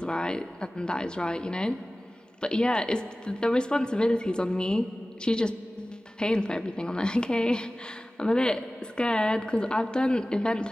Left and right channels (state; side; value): normal; both; correlation 0.97